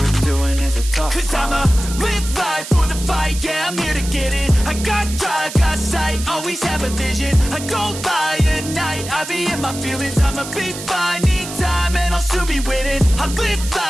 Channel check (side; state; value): right; noise; hiss, 10 dB below the sound